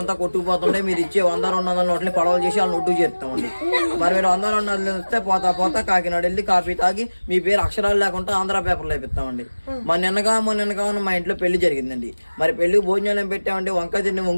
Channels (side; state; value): both; inverted; correlation -1.00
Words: అంతా కొట్టుకుపోతుంటే మీరు ఇచ్చే 100-200 నోట్లని పడవలు చేసి వాళ్ళని ఒడ్డు చేస్తామండి. మరి మీరు 100-200 ఇస్తే పోతా కాకినాడ వెళ్ళి కాఫీ తాగి మీ పేరు అక్షరాలు లేకుండా ఆంధ్ర పేపర్లో వేపిస్తామండి. మొన్న నిన్నగా మా ఇంట్లో పెళ్లి జరిగిందండి. మరి పెళ్లి భోజనాలు పెట్టామండి. వంకాయ తిండి